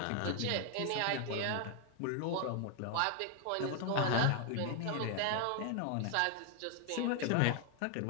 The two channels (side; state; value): both; different; correlation 0.00